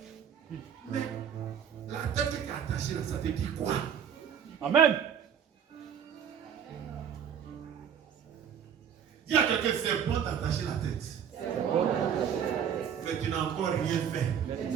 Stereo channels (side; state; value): left; quieter; 8.3 dB